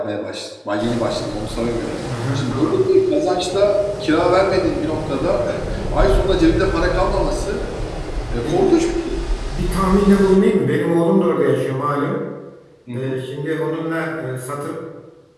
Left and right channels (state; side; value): identical; both; correlation 1.00